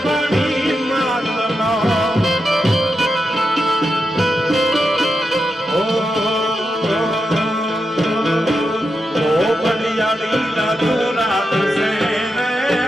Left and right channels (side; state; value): both; normal; correlation 0.86